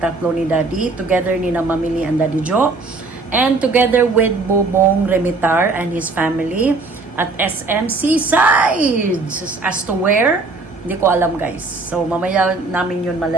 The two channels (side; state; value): left; quieter; 3.7 dB